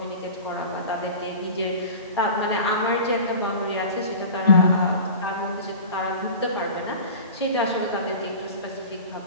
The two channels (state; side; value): inverted; both; correlation -0.36